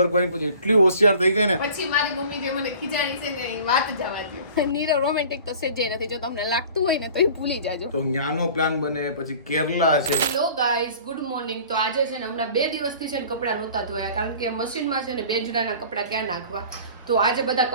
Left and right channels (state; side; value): inverted; both; correlation -0.45